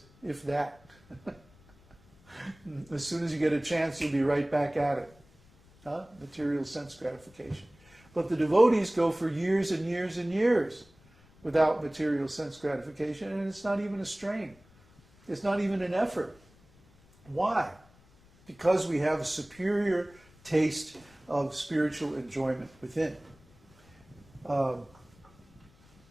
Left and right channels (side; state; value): left; noise; rumble, 28 dB below the sound